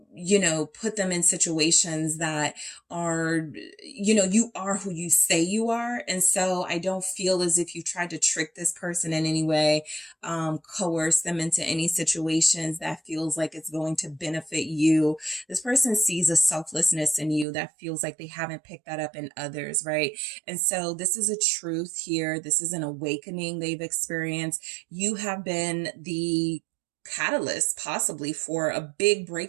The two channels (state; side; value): drops out; left; at 17.4 s